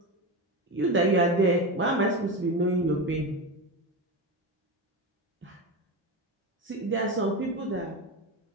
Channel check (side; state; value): both; normal; correlation 0.19